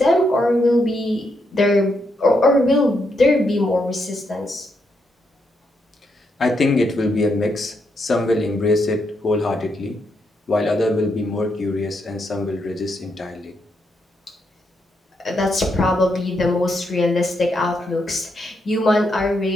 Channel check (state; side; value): normal; both; correlation 0.80